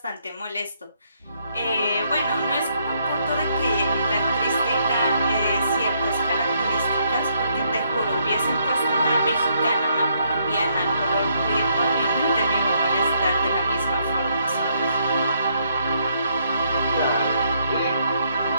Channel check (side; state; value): both; inverted; correlation -0.72